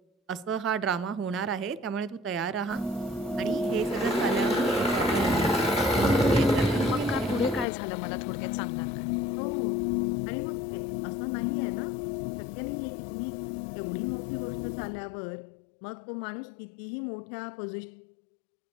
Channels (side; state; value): right; drops out; at 7.7 s